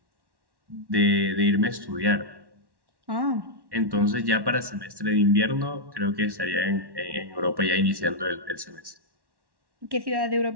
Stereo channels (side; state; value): left; late; 1.1 ms